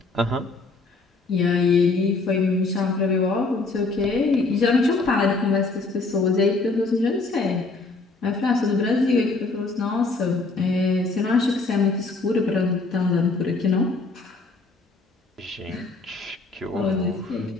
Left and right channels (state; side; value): quieter; right; 3.6 dB